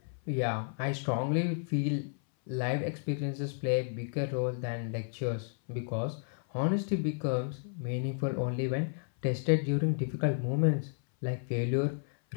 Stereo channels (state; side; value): silent; right; 56 dB below the other